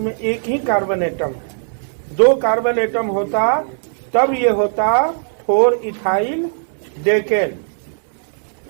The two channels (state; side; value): silent; left; 67 dB below the other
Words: एक ही कार्बन एटम है। 2 कार्बन एटम होता तब ये होता 4 इथाइल डेकेन।